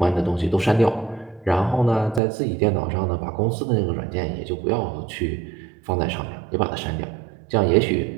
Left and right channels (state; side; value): drops out; left; at 2.2 s